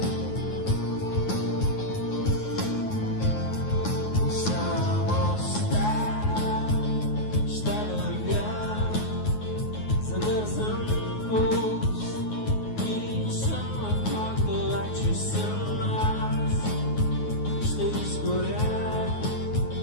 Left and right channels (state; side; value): late; right; 9.5 ms